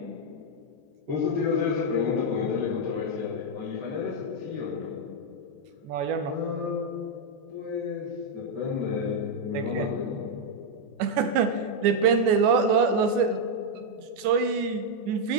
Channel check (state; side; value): late; left; 14 ms